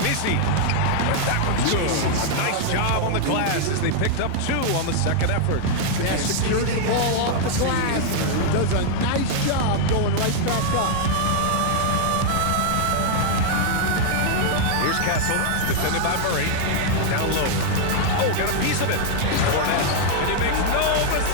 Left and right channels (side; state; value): both; different; correlation 0.00